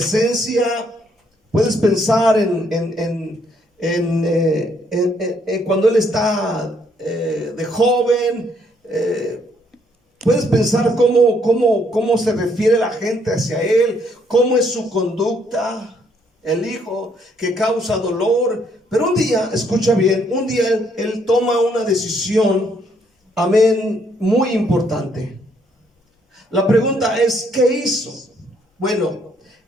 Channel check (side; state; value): both; normal; correlation 0.69